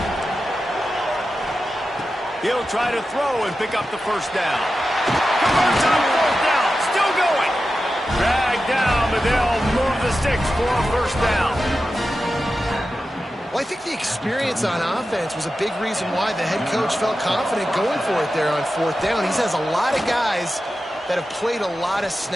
He'll try to throw and pick up the first down. Converts on 4th down. Still going. Dragged down, but they'll move the sticks for a first down. Well, I think the experience on offense was a big reason why the head coach felt confident going for it there on 4th down. He has a lot of guys that have played a lot of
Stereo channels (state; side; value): normal; both; correlation 0.92